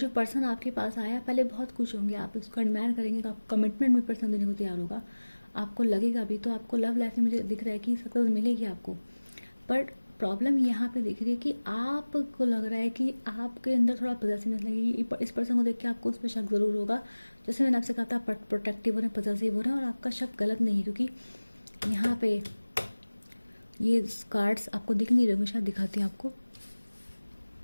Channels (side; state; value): both; inverted; correlation -1.00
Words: पर्सन आपके पास आया, पहले बहुत खुश होंगे, आप उसको एडमायर करेंगे, तो आप कमिटमेंट भी पर्सन देने को तैयार होगा, आपको लगेगा भी, तो आपको लव लाइफ में मुझे दिख रहा है कि सक्सेस मिलेगी आपको। बट प्रॉब्लम यहाँ पे दिख रही है कि आपको लग रहा है कि आपके अंदर थोड़ा पॉजेसिवनेस लगेगी, इस पर्सन को देख के आपको उस पर शक ज़रूर होगा। जैसे मैंने आपसे कहा था, प्रोटेक्टिव हो रहे हैं, पॉजेसिव हो रहे हैं, और आपका शक गलत नहीं है, क्योंकि यहाँ पे ये कार्ड्स आपको दिख नहीं रहे, मैं शायद दिखाती हूँ आपको।